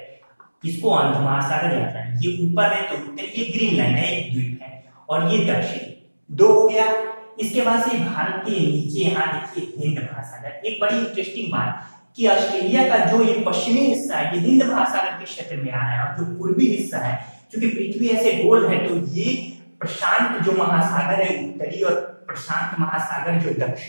इसको अंध महासागर या अटलांटिक। ये ऊपर है तो उत्तरी, ये ग्रीनलैंड है, एक द्वीप है, और ये दक्षिणी, 2 हो गया। इसके बाद से भारत के नीचे यहाँ देखिए हिंद महासागर। एक बड़ी इंटरेस्टिंग बात कि ऑस्ट्रेलिया का जो ये पश्चिमी हिस्सा है, ये हिंद महासागर के क्षेत्र में आ रहा है, और जो पूर्वी हिस्सा है, क्योंकि पृथ्वी ऐसे गोल है, तो ये प्रशांत जो महासागर है उत्तरी, और प्रशांत महासागर जो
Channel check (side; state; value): both; inverted; correlation -1.00